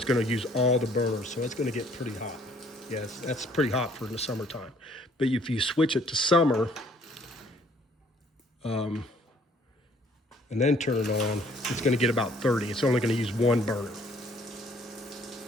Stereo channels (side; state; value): both; normal; correlation 0.61